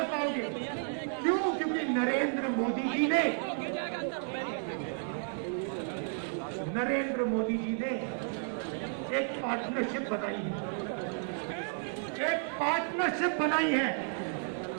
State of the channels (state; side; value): silent; left; 56 dB below the other